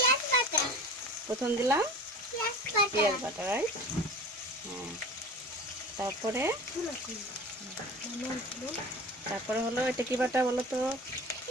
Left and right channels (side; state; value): both; normal; correlation 0.37